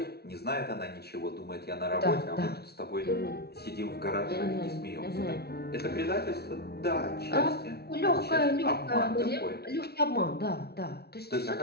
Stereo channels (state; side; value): late; right; 0.46 ms